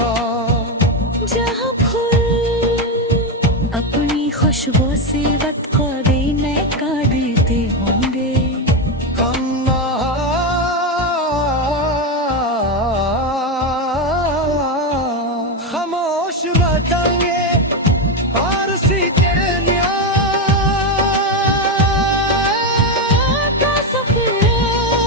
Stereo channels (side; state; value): both; normal; correlation 0.09